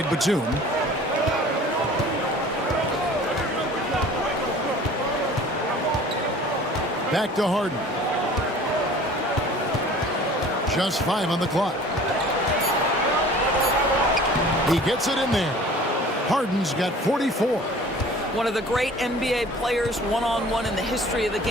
Batum. Back to Harden. Just 5 on the clock. He gets it in there. Harden's got 44. One of the great NBA players one-on-one in the history of the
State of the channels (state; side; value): normal; both; correlation 0.46